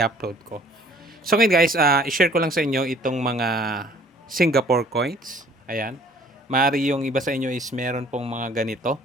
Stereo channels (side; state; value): both; normal; correlation 0.55